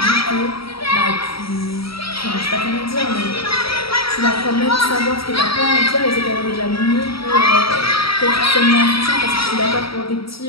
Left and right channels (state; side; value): late; right; 0.75 ms